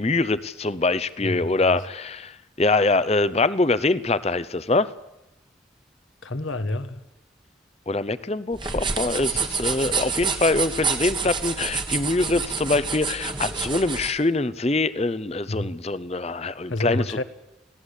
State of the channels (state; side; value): normal; both; correlation 0.43